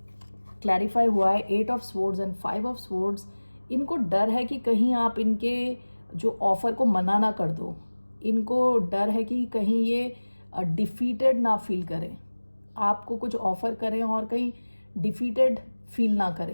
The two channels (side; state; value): both; inverted; correlation -1.00